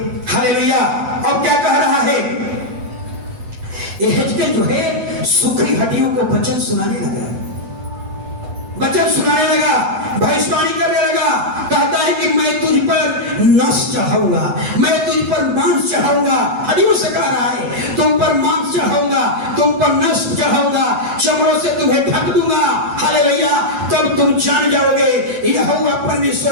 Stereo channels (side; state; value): left; late; 8.0 ms